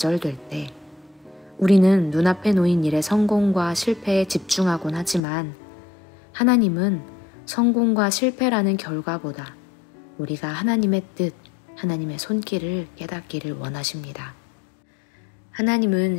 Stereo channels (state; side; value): drops out; right; at 5.2 s